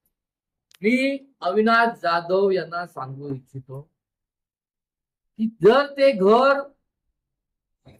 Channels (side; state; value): both; identical; correlation 1.00